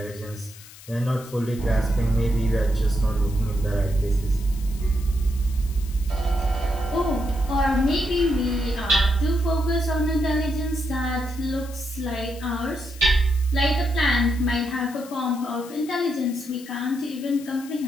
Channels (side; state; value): left; noise; hiss, 19 dB below the sound